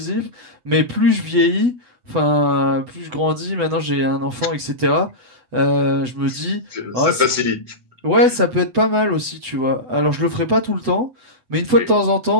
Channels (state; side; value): late; left; 8.0 ms